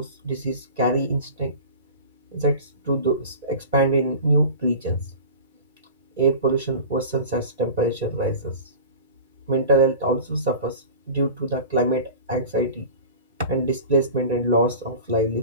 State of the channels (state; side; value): inverted; both; correlation -0.36